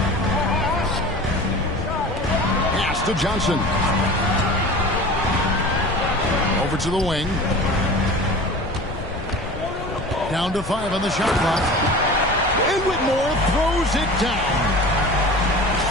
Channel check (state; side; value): noise; left; rumble, 10 dB below the sound